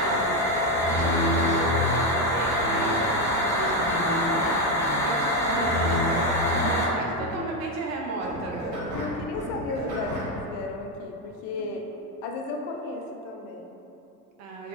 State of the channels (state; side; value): normal; both; correlation 0.08